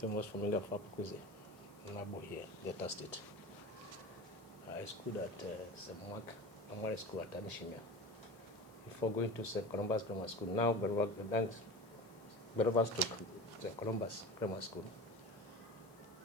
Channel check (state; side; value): noise; left; hiss, 27 dB below the sound